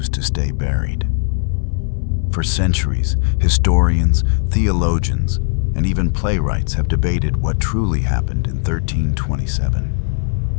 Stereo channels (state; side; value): silent; right; digital silence